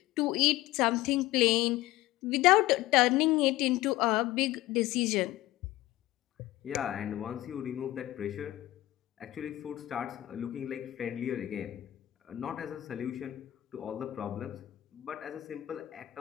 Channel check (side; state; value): right; quieter; 16.2 dB